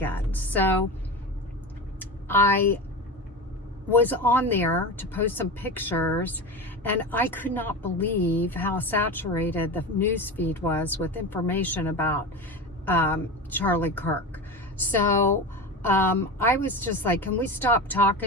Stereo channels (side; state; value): both; normal; correlation 0.26